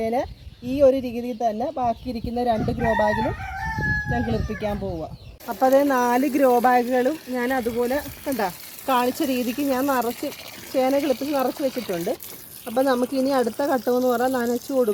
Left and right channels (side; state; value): both; identical; correlation 1.00